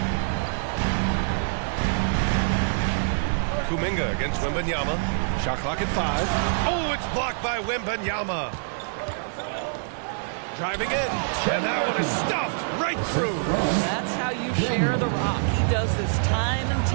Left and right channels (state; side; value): silent; left; digital silence